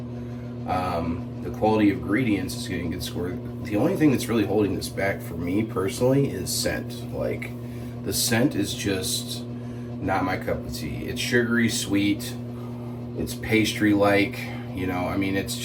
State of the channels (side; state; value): both; identical; correlation 1.00